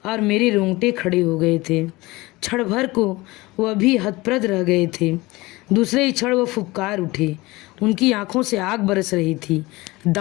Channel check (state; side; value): quieter; right; 21.3 dB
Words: और मेरे रोंगटे खड़े हो गए थे। क्षण भर को वह भी हतप्रद रह गए थे। दूसरे ही क्षण वह फुफकार उठे। उनकी आंखों से आग बरस रही थी।